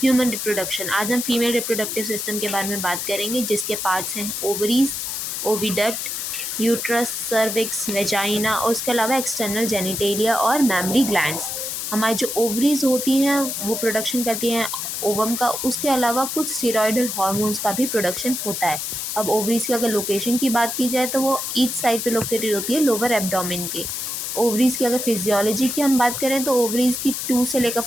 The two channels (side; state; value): left; noise; hiss, 4 dB below the sound